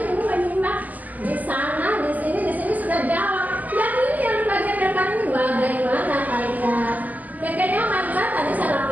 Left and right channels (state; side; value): late; left; 0.080 ms